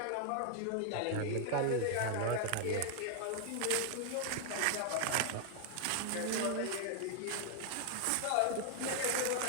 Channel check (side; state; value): both; different; correlation 0.00